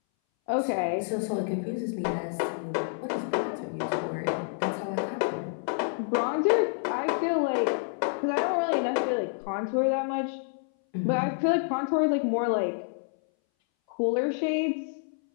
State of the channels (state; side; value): silent; right; 59 dB below the other